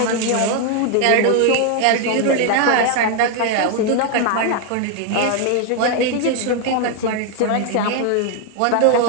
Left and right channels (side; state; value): both; different; correlation 0.01